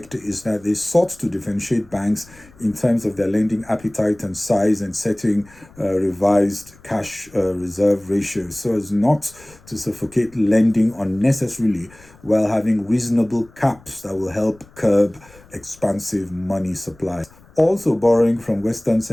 is that they sought to differentiate banks in terms of their lending appetite and size and setting revised cash reserve ratios so as not to suffocate lending unnecessarily while having reasonable caps that will help curb expansive money supply. Also, borrowing from Western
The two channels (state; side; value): noise; left; rumble, 25 dB below the sound